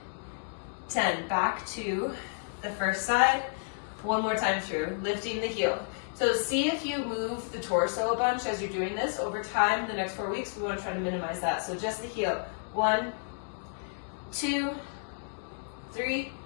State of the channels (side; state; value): right; silent; digital silence